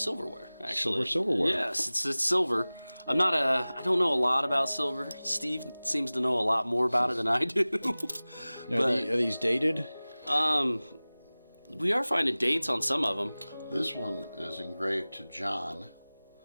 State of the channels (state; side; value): inverted; both; correlation -0.99